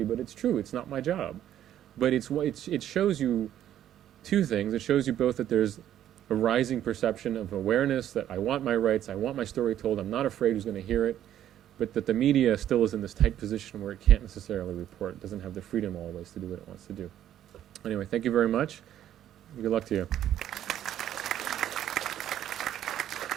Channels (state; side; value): quieter; left; 11.3 dB